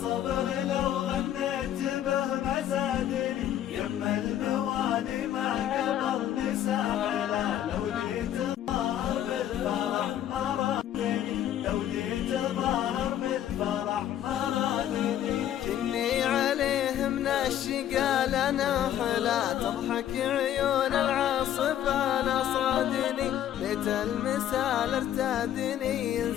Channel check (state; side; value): quieter; right; 11.2 dB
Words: لو غنيت به ما زادني، يما الموالي ما قبلني ساحلة، لو جيت ظاهر بالفرح ما رادني، لو جيت ظاهر بالفرح ما رادني. كني عليه من الشقا لنا حلا، تضحك عيون العاصفة نصادني، بيت المثال ارتادني